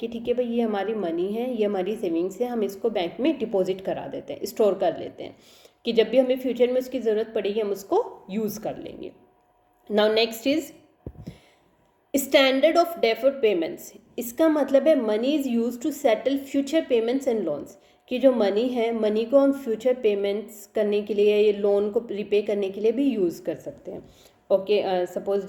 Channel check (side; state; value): both; identical; correlation 1.00